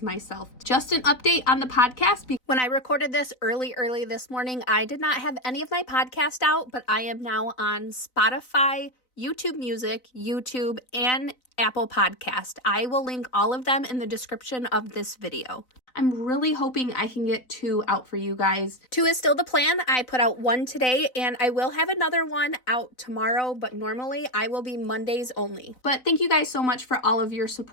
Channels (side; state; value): right; late; 4.0 ms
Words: myself. Just an update on the podcast. When I recorded this early this morning, I did not have any of my podcast out, but I am now on Spotify, YouTube Music, YouTube, and Apple Podcast. I will link all of them in the description of this video. I'm really hoping I can get 2 out for you guys. 2 is still the plan. I put out 1 today, and I will have another one out tomorrow, but normally I will be Mondays only. But thank you guys so much for all of your